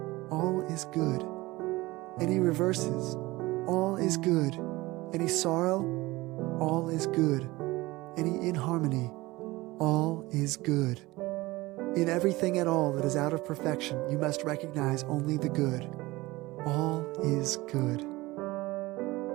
all is good. Any reverses, all is good. Any sorrow, all is good. Any inharmony, all is good. In everything at all that is out of perfection, you must recognize only the good. All is good.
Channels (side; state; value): left; quieter; 20.4 dB